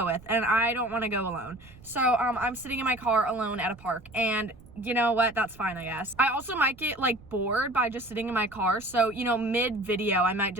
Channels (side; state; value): right; noise; rumble, 23 dB below the sound